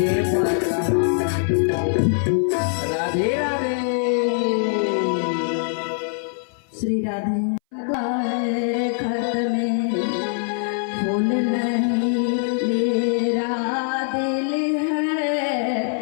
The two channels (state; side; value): silent; right; 60 dB below the other